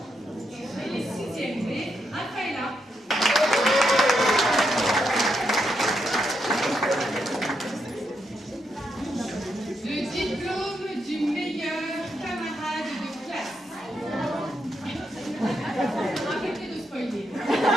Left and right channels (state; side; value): normal; both; correlation 0.81